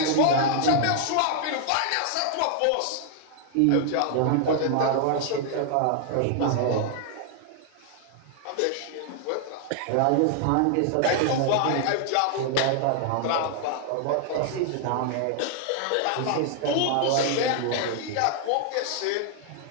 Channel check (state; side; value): different; both; correlation 0.00